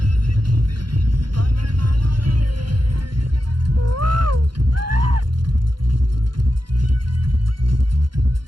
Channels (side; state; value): left; late; 0.72 ms